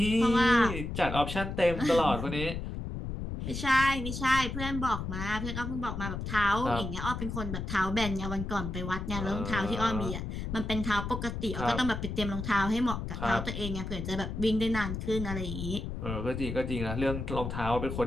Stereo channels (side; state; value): left; noise; rumble, 5 dB below the sound